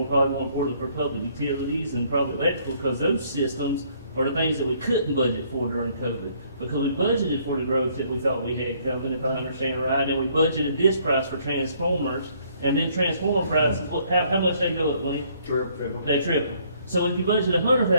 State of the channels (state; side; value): inverted; both; correlation -0.65